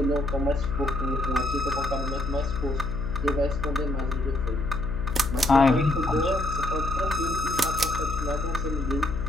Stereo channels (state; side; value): noise; left; hum, 7 dB below the sound